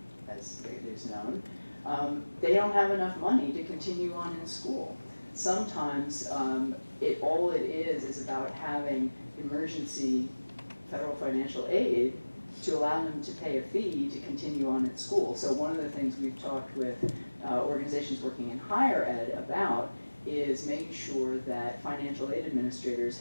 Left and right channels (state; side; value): inverted; both; correlation -1.00